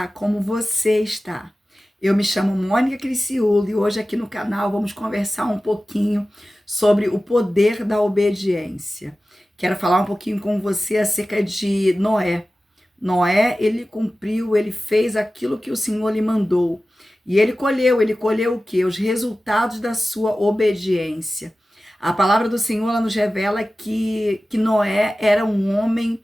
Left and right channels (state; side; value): normal; both; correlation 0.95